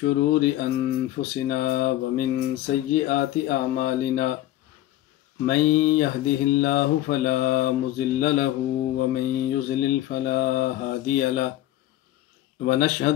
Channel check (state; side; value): quieter; right; 14.4 dB